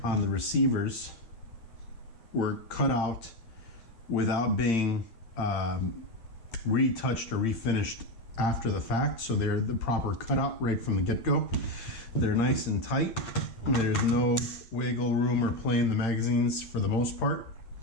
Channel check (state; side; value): late; right; 8.8 ms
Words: on the receivers were cut out without being retouched or refinished after the fact, so they're the proper cutout right from the get-go. They're nice and tight. There's no wiggle room or play in the magazines for the most part.